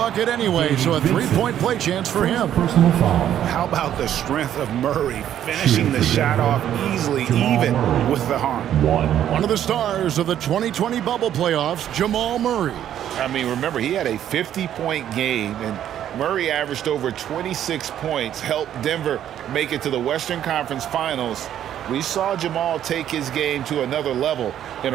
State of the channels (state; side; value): quieter; left; 10.7 dB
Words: anyway, so a 3-point play chance for him. Personal foul. How about the strength of Murray finishing the shot off easily, even with the harm? One of the stars of the 2020 bubble playoffs, Jamal Murray. I mean, remember, he had a 50-point game, and Murray averaged over 26 points, helped Denver make it to the Western Conference Finals. We saw Jamal take his game to another level in